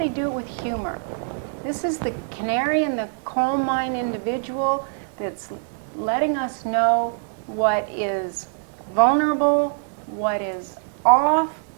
do it with humor. This is the canary in the coal mine individual that's letting us know what is vulnerable, what is off,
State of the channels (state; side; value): silent; left; digital silence